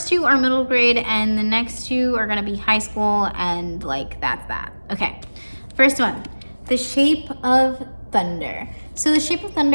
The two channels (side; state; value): both; inverted; correlation -1.00